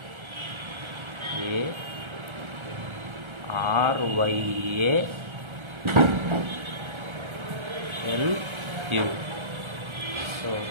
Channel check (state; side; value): late; left; 1.3 ms